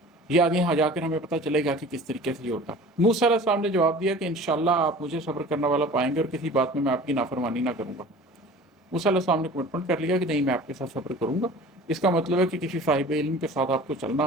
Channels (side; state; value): both; normal; correlation 0.42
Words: یہ آگے یہاں جا کر ہمیں پتہ چلے گا کہ کس طریقے سے یہ ہوتا۔ موسیٰ علیہ السلام نے جواب دیا کہ انشاءاللہ آپ مجھے صبر کرنے والا پائیں گے اور کسی بات میں آپ کی نافرمانی نہ کروں گا۔ موسیٰ علیہ السلام نے کمٹمنٹ کر لیا کہ نہیں، میں آپ کے ساتھ صبر کروں گا۔ اس کا مطلب ہے کہ کسی صاحب علم کے ساتھ آپ کو چلنا